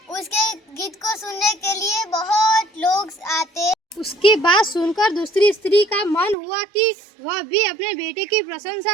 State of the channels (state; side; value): drops out; left; at 6.4 s